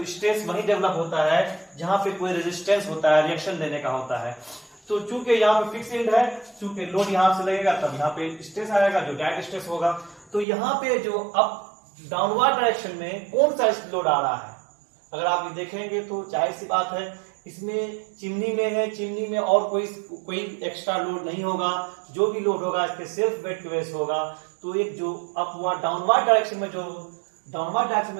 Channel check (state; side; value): drops out; left; at 10.5 s